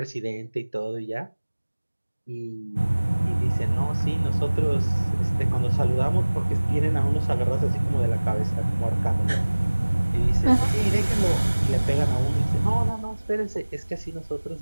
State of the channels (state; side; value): inverted; both; correlation -1.00